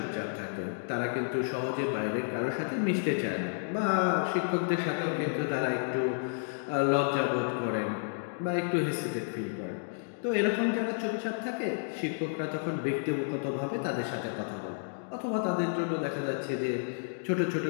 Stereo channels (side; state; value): right; silent; digital silence